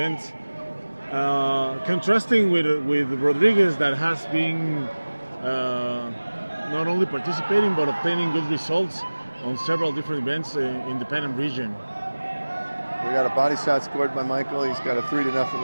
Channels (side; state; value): both; inverted; correlation -1.00